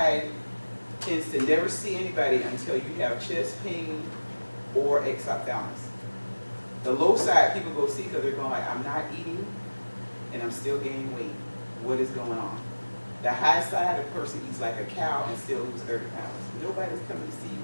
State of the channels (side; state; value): both; inverted; correlation -1.00